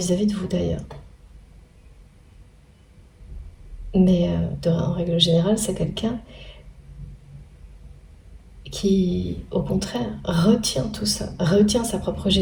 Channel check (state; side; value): identical; both; correlation 1.00